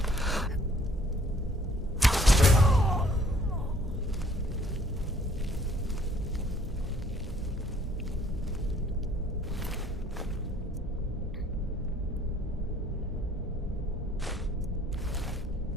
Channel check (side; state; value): both; normal; correlation 0.60